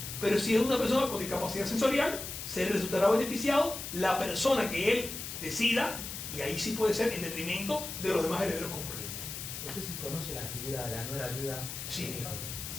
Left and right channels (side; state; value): left; noise; hiss, 7 dB below the sound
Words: Pero si es una persona con discapacidad sensorial, se resultará beneficiado la persona que él decida, y ahí sí puede ser en detrimento de los demás herederos concurrentes. No sé si conoce la figura de la nuera viuda. Sí.